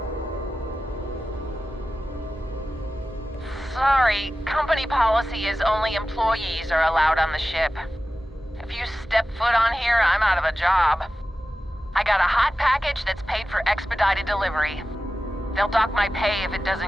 Sorry, company policy is only employees are allowed on the ship. If you step foot on here, I'm out of a job. I got a hot package that's paid for expedited delivery. They'll dock my pay if it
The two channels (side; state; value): both; normal; correlation 0.94